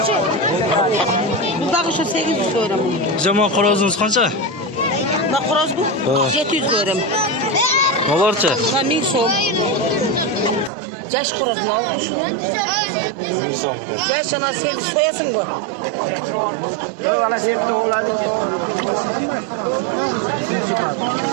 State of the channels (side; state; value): left; drops out; at 10.7 s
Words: Buradaki şu 800 lira mı? Zaman qorozunuz qancha? Bak xoroz bu 700 lira mı? Nelarcha? Ha 1000 so'm. Yaş xoroz mu aldın şunu? 1000 so'm ekan. Yaş ana sen soyasın bu.